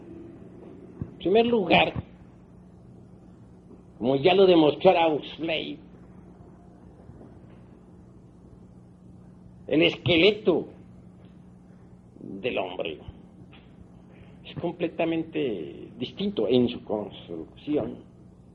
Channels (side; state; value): both; identical; correlation 1.00